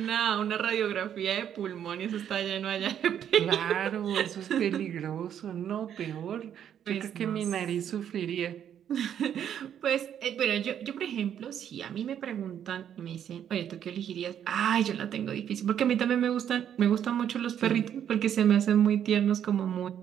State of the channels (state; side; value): quieter; left; 9.5 dB